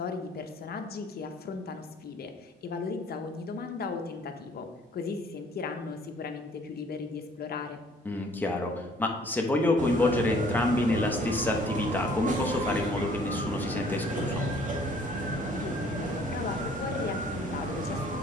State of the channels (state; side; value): normal; both; correlation 0.58